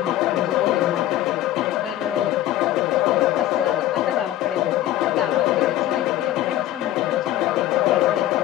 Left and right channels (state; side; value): quieter; right; 13.8 dB